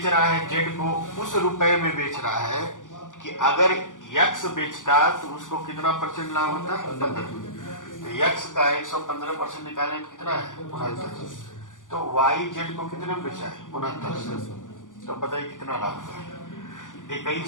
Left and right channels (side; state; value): right; late; 0.87 ms